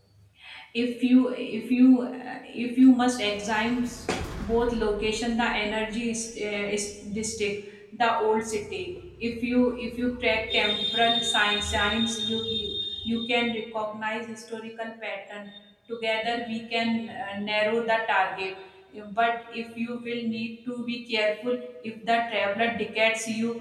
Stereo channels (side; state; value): both; identical; correlation 1.00